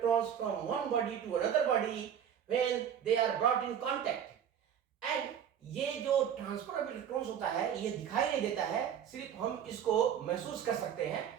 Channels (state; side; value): quieter; left; 8.9 dB